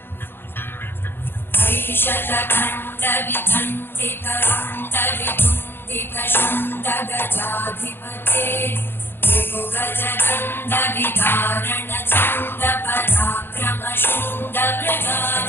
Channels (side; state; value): right; late; 0.10 ms